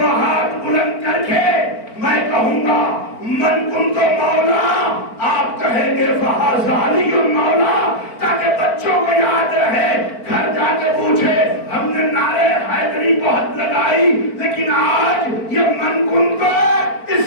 ہاتھ بلند کر کے میں کہوں گا من کنت مولا، آپ کہیں گے فہذا علی المولا، تاکہ بچوں کو یاد رہے، گھر جا کے پوچھے ہم نے نعرے حیدری بہت لگائی لیکن آج یہ من کنت اس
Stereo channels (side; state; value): right; late; 4.4 ms